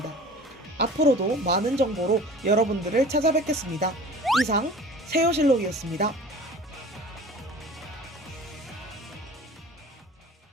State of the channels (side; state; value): both; normal; correlation 0.42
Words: 앞으로도 많은 정보로 여러분들을 찾아뵙겠습니다. 이상 세요실록이었습니다.